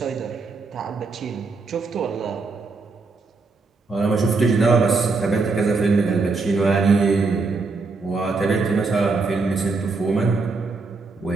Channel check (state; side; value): quieter; left; 4.0 dB